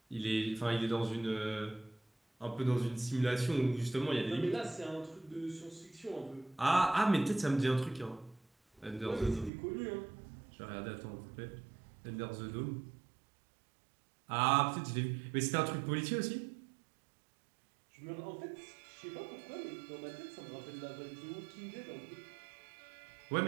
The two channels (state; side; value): drops out; left; at 9.5 s